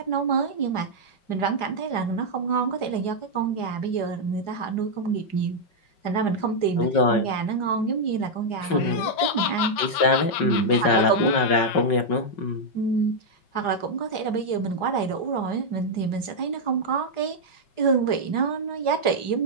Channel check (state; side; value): late; right; 5.4 ms